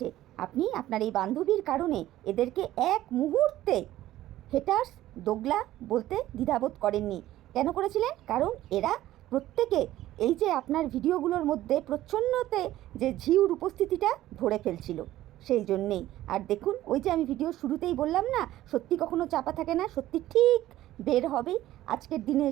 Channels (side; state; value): left; quieter; 14.5 dB